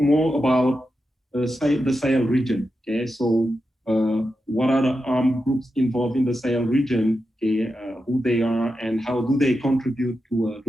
more about the Sahel region. Okay, so what are the armed groups involved in the Sahel region? Okay, who they are and how do they contribute to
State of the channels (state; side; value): normal; both; correlation 0.89